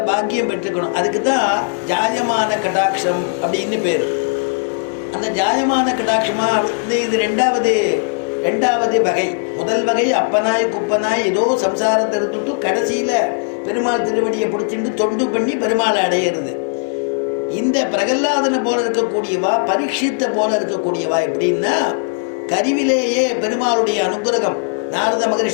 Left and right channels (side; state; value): right; silent; 67 dB below the other